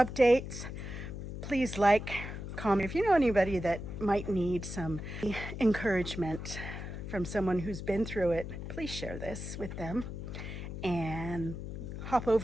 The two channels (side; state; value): left; noise; hum, 7 dB below the sound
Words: Please like, comment. If you know anybody that might need some encouragement from someone who's been through it, please share this with them. And hop